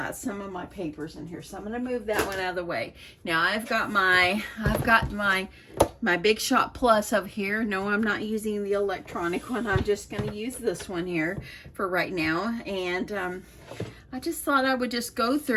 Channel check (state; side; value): identical; both; correlation 1.00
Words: some of my papers in here. So I'm going to move that one out of the way. Now I've got my Big Shot Plus over here. No, I'm not using the electronic one. I'm just going to use this one here for right now. And I just thought I would just go